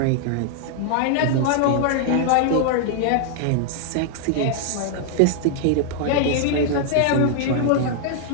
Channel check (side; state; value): both; different; correlation -0.01